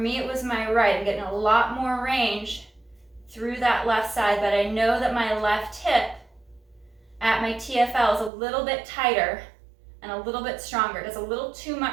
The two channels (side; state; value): left; drops out; at 8.3 s